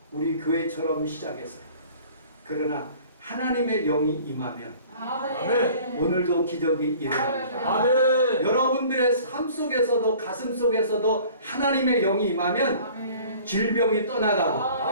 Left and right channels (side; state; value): both; inverted; correlation -0.49